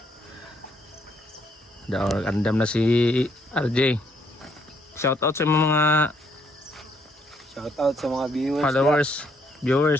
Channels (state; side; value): normal; both; correlation 0.70